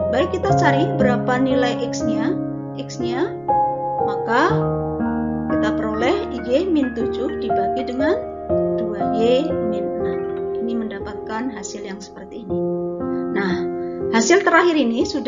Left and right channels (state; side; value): identical; both; correlation 1.00